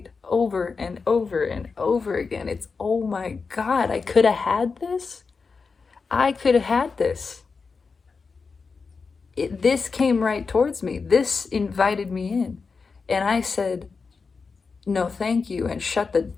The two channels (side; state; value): right; quieter; 4.8 dB